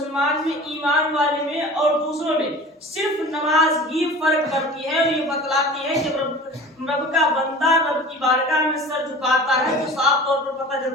میں، ایمان والے میں اور دوسروں میں صرف نماز ہی فرق کرتی ہے، اور یہ بتلاتی ہے کہ رب کا بندہ رب کی بارگاہ میں سر جھکاتا ہے تو صاف طور پر پتہ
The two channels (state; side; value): normal; both; correlation 0.39